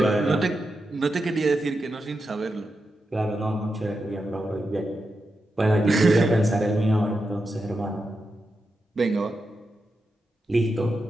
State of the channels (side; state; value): both; normal; correlation 0.88